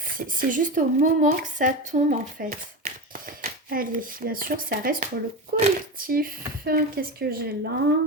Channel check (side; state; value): both; normal; correlation 0.21